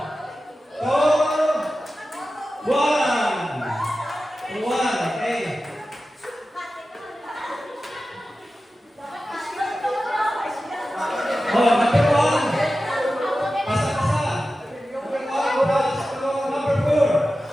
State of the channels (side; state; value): both; normal; correlation 0.94